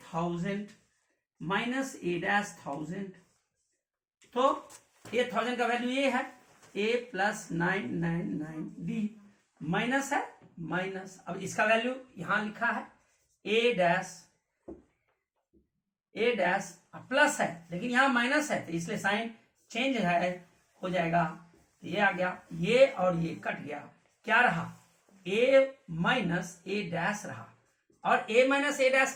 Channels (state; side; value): identical; both; correlation 1.00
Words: 1000 माइनस a डैश 1000, तो a 1000 का वैल्यू ये है, a प्लस 999 डी, माइनस है माइनस, अब इसका वैल्यू यहां लिखा है a डैश प्लस है, लेकिन यहां माइनस है, तो इसलिए साइन चेंज है, हो जाएगा, तो ये आ गया, ये और ये कट गया, क्या रहा, a माइनस a डैश रहा, और a माइनस a डैश